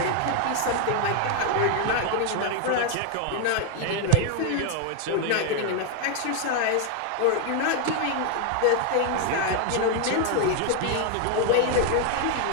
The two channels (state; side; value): different; both; correlation 0.01